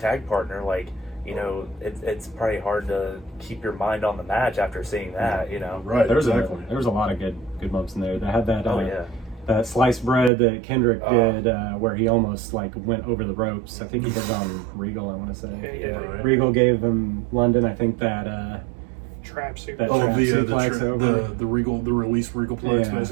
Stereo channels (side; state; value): left; drops out; at 10.3 s